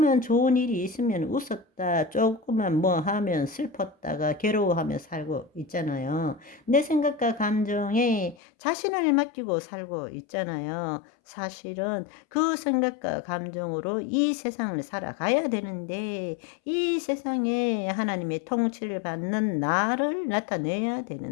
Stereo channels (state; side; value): drops out; right; at 8.3 s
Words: 좋은 일이 있으면 웃었다, 조금만 뭐 하면 슬펐다가 괴로워하며 살고 있잖아요. 내 생각과 감정에 자신을 맡기고 살고 있잖아요. 사실은 그 생각과 감정으로 이 세상을 살아가야 되는데 이 세상에 하나님의 통치를 받는 나를 나타내야